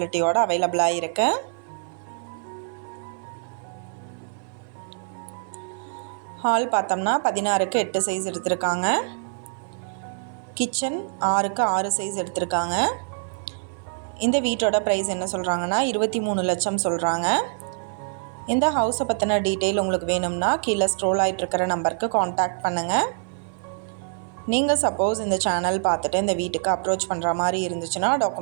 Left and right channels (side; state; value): left; silent; 57 dB below the other